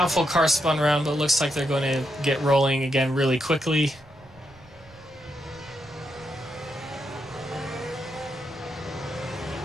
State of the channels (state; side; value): noise; right; rumble, 24 dB below the sound